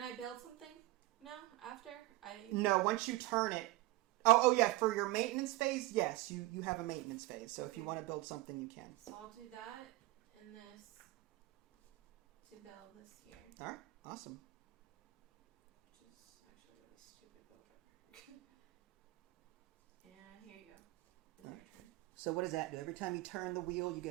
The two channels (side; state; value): left; quieter; 19.0 dB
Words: I build something now after I? No, once you turn it. Oh yeah. For your maintenance phase, yes, you have a maintenance phase. So if you want to build something, you can. So I'll do that and this to build this here. All right. Awesome. Which is actually really stupid builder. And here you go. It's your turn. So what does that do? Every time you turn the wheel, you